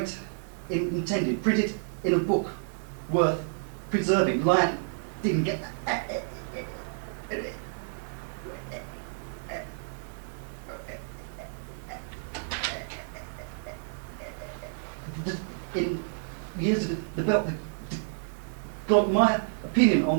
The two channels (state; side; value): silent; left; 56 dB below the other